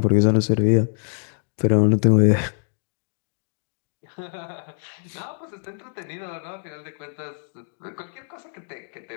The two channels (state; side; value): silent; right; 62 dB below the other